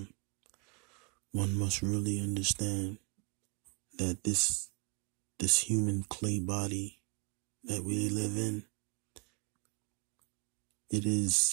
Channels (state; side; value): quieter; left; 35.4 dB